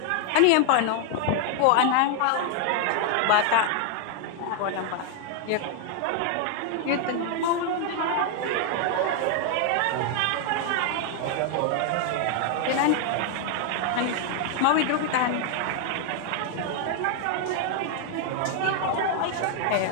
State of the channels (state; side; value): different; both; correlation 0.00